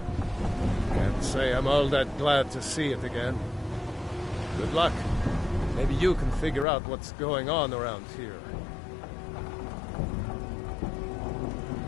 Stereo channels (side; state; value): right; drops out; at 6.7 s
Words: Can't say I'm all that glad to see it again. Good luck. Maybe you can figure out what's going on around here.